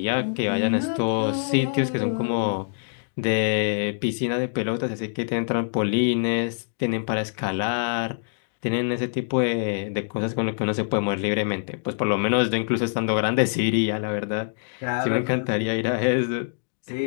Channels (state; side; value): silent; right; digital silence